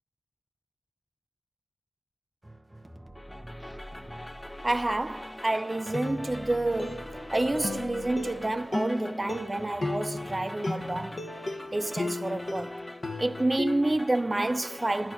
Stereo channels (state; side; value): normal; both; correlation 0.98